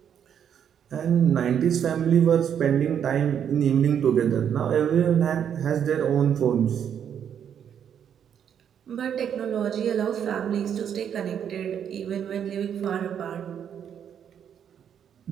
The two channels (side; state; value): left; quieter; 8.6 dB